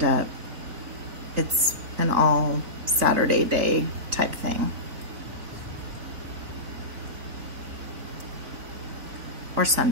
up, it's an all Saturday day type thing. Or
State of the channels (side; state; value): left; late; 3.9 ms